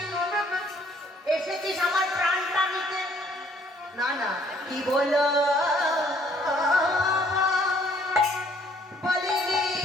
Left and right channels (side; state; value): both; normal; correlation 0.63